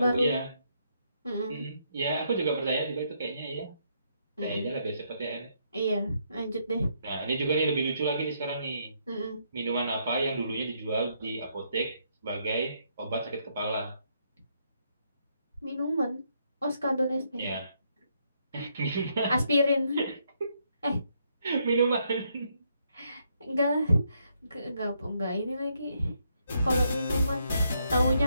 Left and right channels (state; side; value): inverted; both; correlation -0.75